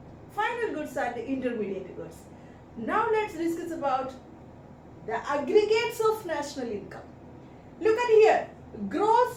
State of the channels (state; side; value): identical; both; correlation 1.00